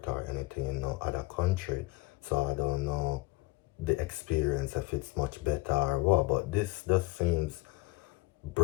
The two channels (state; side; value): quieter; right; 22.0 dB